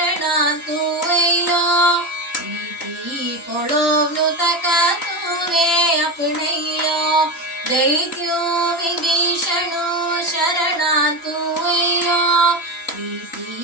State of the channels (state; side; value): late; right; 3.0 ms